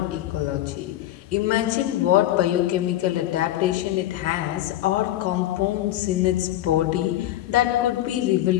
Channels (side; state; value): right; quieter; 13.9 dB